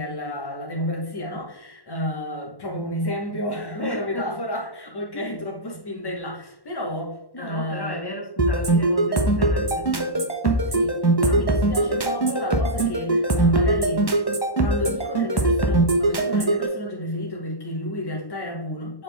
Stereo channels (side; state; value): right; late; 1.1 ms